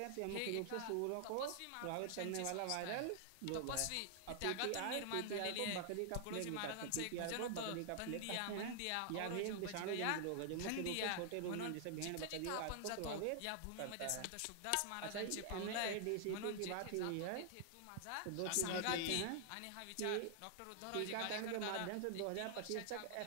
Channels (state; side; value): different; both; correlation -0.01